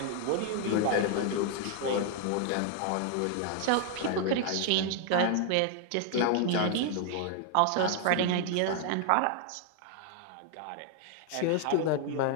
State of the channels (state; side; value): different; both; correlation 0.00